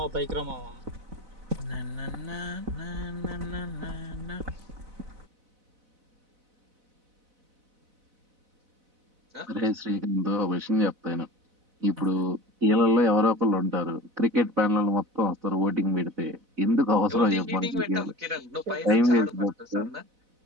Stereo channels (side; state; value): left; late; 4.0 ms